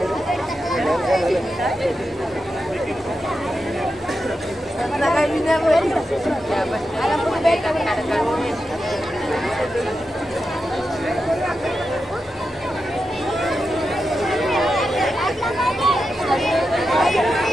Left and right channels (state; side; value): normal; both; correlation 0.89